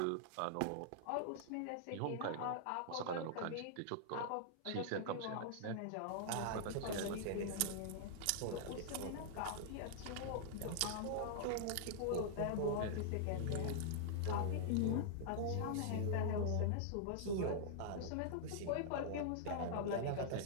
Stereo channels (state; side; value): different; both; correlation -0.01